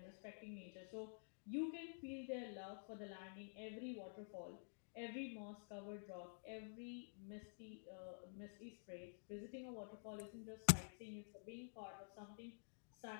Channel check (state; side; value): silent; right; digital silence